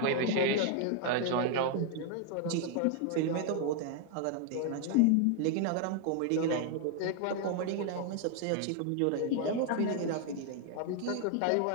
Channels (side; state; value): both; different; correlation 0.00